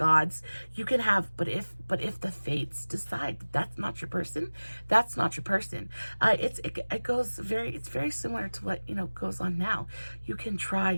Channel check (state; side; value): inverted; both; correlation -1.00